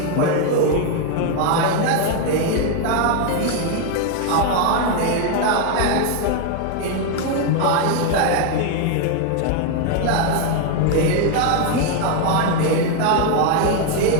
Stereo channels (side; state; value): both; different; correlation 0.01